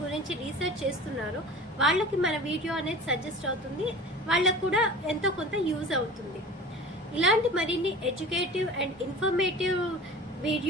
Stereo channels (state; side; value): normal; both; correlation 0.38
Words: గురించి రీసెర్చ్ చేస్తున్నారో వాళ్ళకి మన వీడియో అనేది సజెస్ట్ అవుతుంది, వాళ్ళకు కూడా ఎంతో కొంత యూజ్ అవుతుంది. ఇలాంటి మరిన్ని ఎడ్యుకేటివ్ అండ్ ఇన్ఫర్మేటివ్